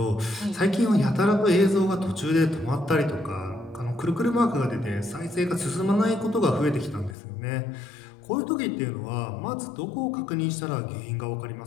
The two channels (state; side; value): drops out; right; at 7.2 s